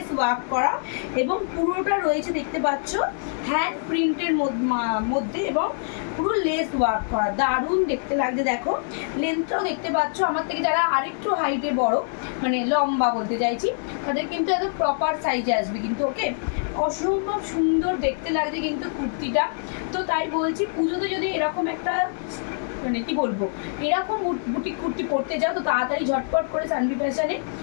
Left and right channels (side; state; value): right; silent; 62 dB below the other